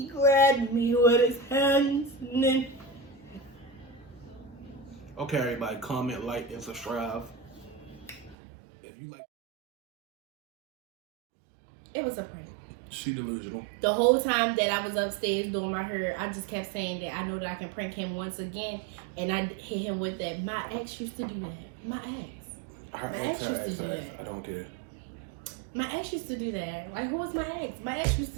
grabbed me with his hands. And then Okay, everybody. Comment, like, and subscribe. If you like. it was a prank. She delusional. The whole time that I was upstairs doing my hair, I just kept saying that I know that I can prank him once again. And I hit him with that. My ex used to do that. My ex. Her ex. I don't care. My ex used to do that. Like, who was my ex? My ex used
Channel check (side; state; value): left; drops out; at 8.3 s